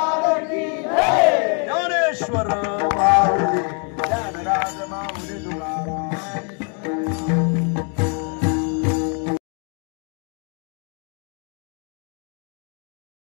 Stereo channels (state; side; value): quieter; right; 39.1 dB